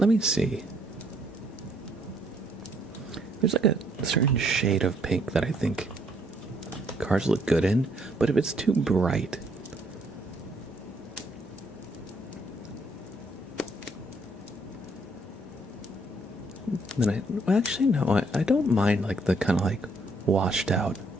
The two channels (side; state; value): both; normal; correlation 0.68